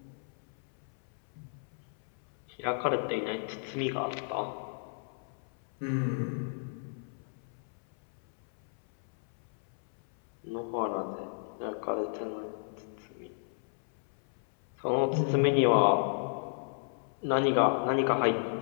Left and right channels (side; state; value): right; silent; 56 dB below the other